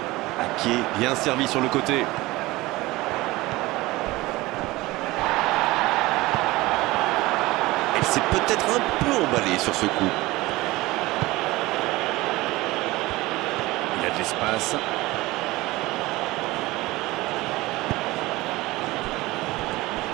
Ake, bien servi sur le côté. Elle s'est peut-être un peu emballée sur ce coup. Il a de l'espace.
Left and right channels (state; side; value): quieter; left; 19.8 dB